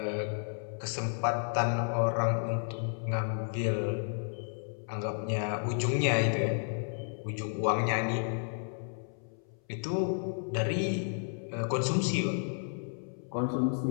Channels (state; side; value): silent; right; 56 dB below the other